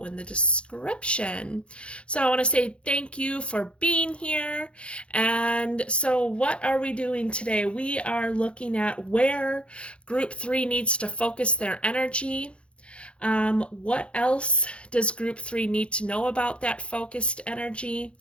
in the description. So I want to say thank you for being here. And so what are we doing today? We are looking at where Group 3 needs to focus their energy. What else does Group 3 need to know about that focused energy?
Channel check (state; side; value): late; right; 0.059 ms